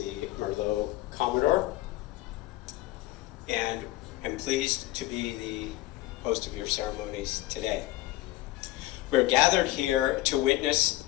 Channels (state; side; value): quieter; right; 17.1 dB